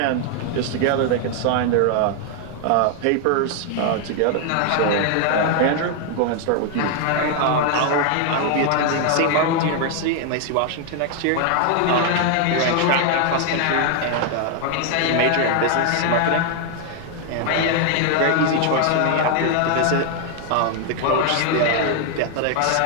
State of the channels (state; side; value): different; both; correlation 0.00